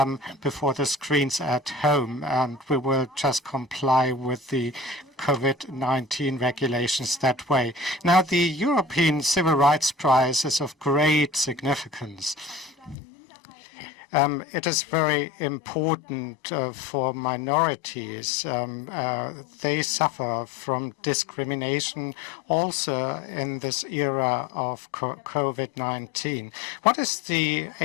before the screens at home, and we will just comply with the COVID-19 regulations that way. Now, the European Civil Rights Prize is of great significance. It is very important for minorities. They suffer from discrimination also in this era of COVID-19. What is the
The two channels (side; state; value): right; drops out; at 13.0 s